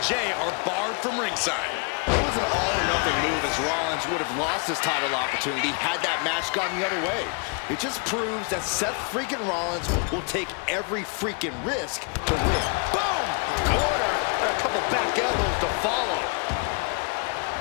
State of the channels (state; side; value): quieter; right; 35.4 dB